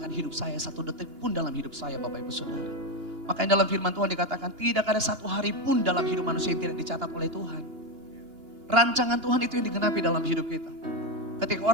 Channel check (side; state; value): left; late; 2.9 ms